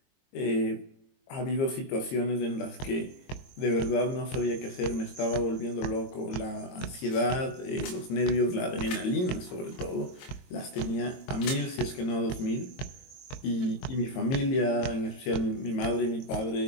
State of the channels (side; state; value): right; late; 22 ms